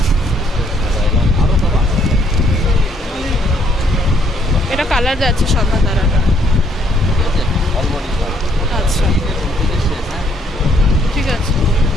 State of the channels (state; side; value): normal; both; correlation 0.67